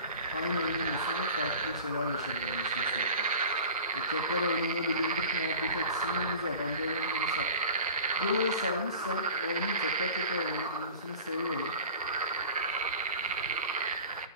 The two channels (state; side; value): inverted; both; correlation -0.40